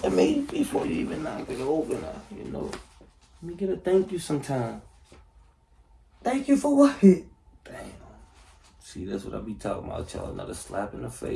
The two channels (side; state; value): both; identical; correlation 1.00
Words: I mean, before you even knock it over, you know, let me get a thank you sometime. Thank you for what? Damn. See, that's what I be talking about, y'all. Another slap in the